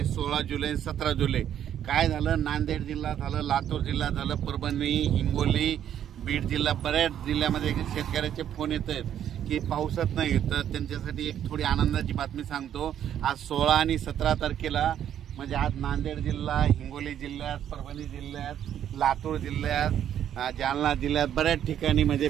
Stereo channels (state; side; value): quieter; left; 10.1 dB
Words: 16 जुलै 17 जुलै काय झालं, नांदेड जिल्हा झालं, लातूर जिल्हा झालं, परभणी, हिंगोली, बीड जिल्हा, बऱ्याच जिल्ह्यामध्ये शेतकऱ्याचे फोन येत आहेत की पावसात नाही। तर त्यांच्यासाठी एक थोडी आनंदाची बातमी सांगतो। आज 16 आणि 17 तारखेला म्हणजे आज नांदेड जिल्हा, हिंगोली जिल्ह्यात, परभणी जिल्ह्यात, लातूर जिल्ह्यात, जालना जिल्ह्यात बऱ्याच ठिकाणी म्हणजे